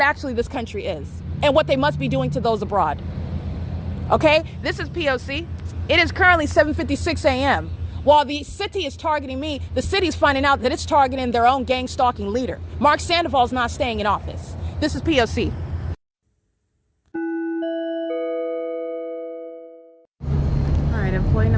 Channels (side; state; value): both; identical; correlation 1.00